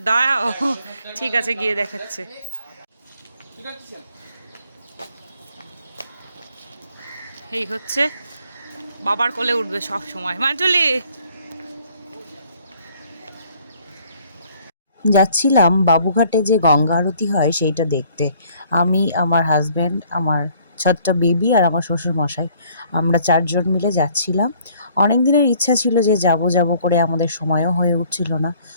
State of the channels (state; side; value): inverted; both; correlation -0.60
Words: দাঁড়াও, ঠিক আছে গিয়ে দেখাচ্ছে। এই হচ্ছে বাবার কোলে উঠবে সব সময়। মান্টুলি, যাচ্ছিলাম বাবুঘাটে যে গঙ্গা আরতি হয় সেইটা দেখতে। আমি, আমার হাজব্যান্ড, আমার ছোট্ট বেবি আর আমার শ্বশুর মশাই, আমরা 4 জন মিলে যাচ্ছিলাম। অনেক দিনের ইচ্ছা ছিল যে যাব যাব করে, আমাদের সময়ও হয়ে উঠছিল না।